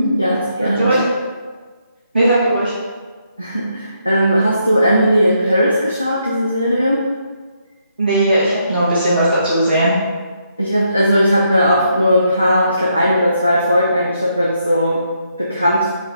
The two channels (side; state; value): both; inverted; correlation -0.76